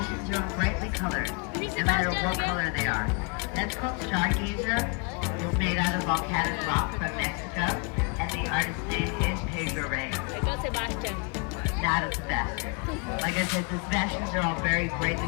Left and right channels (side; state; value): right; quieter; 34.0 dB